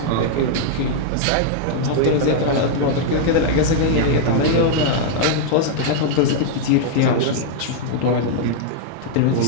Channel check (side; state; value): both; different; correlation -0.01